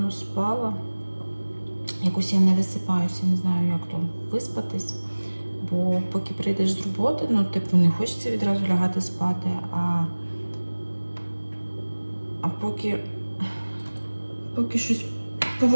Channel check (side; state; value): both; inverted; correlation -1.00